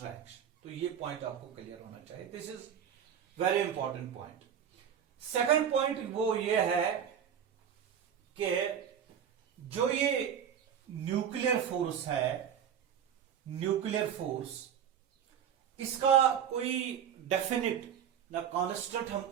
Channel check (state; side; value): quieter; left; 8.7 dB